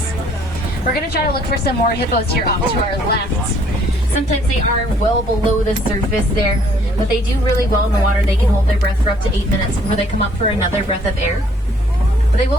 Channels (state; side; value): normal; both; correlation 0.62